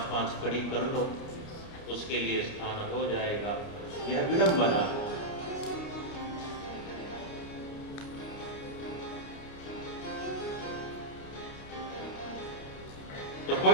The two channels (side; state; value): right; late; 29 ms